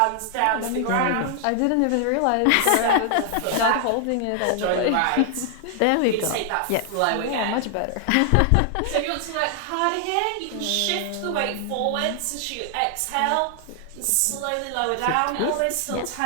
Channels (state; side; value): different; both; correlation 0.00